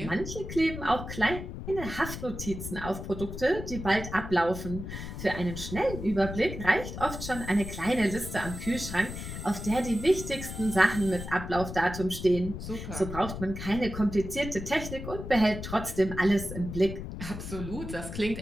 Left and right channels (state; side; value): noise; left; rumble, 8 dB below the sound